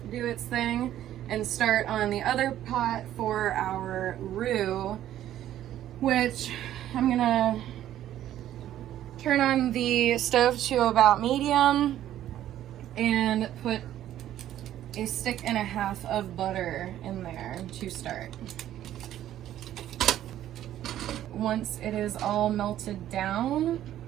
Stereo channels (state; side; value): quieter; left; 12.2 dB